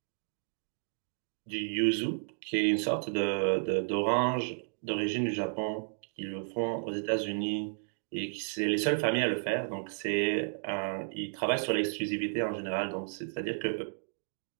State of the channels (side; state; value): left; silent; digital silence